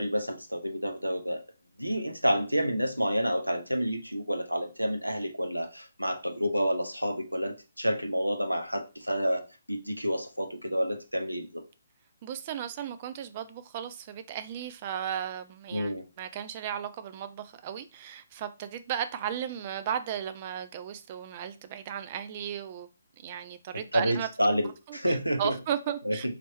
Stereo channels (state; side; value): inverted; both; correlation -0.85